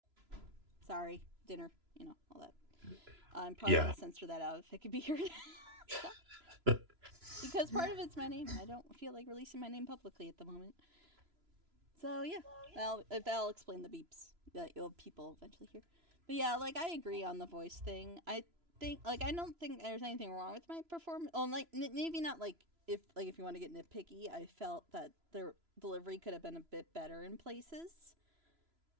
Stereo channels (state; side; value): late; left; 3.0 ms